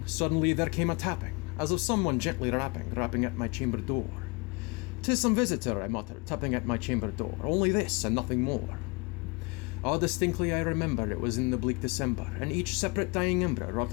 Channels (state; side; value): quieter; right; 29.3 dB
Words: suddenly there came a tapping, as of someone gently rapping at my chamber door. "'Tis some visitor," I muttered, tapping at my chamber door, "only this, and nothing more." Ah, distinctly I remember it was in the bleak December, and each separate dying ember wrought